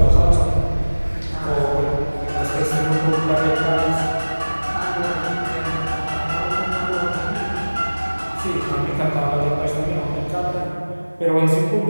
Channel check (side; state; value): both; inverted; correlation -1.00